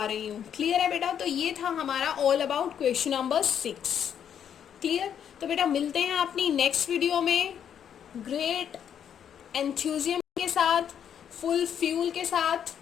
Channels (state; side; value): quieter; right; 8.8 dB